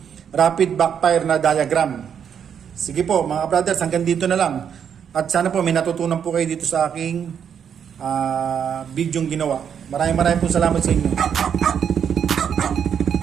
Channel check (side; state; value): left; quieter; 8.0 dB